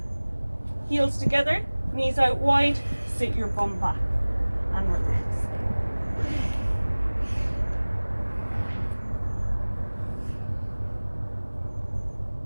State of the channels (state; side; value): inverted; both; correlation -1.00